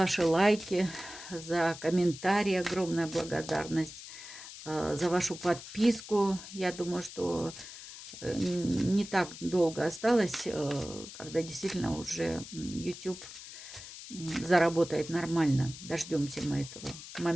лайки, за комментарии. Огромная благодарность за вашу подписку. Я думаю, что не так долго осталось, когда действительно уже YouTube заработает нормально. Дождемся мы этого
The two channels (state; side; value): noise; left; hiss, 13 dB below the sound